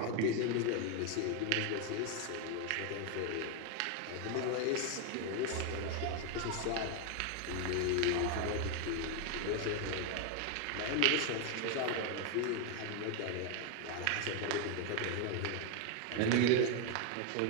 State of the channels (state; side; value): different; both; correlation 0.01